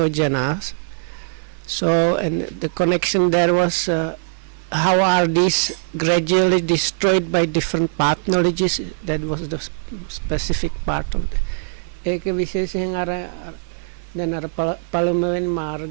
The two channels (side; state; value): left; silent; 65 dB below the other